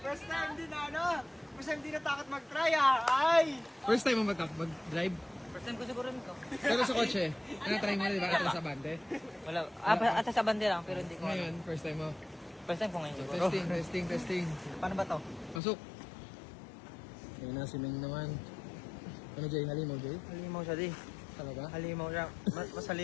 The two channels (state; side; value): drops out; right; at 15.6 s